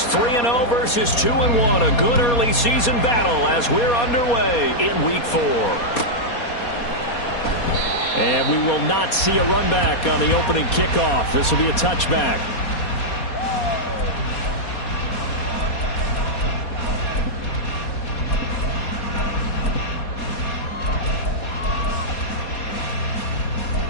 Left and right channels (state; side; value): late; right; 4.2 ms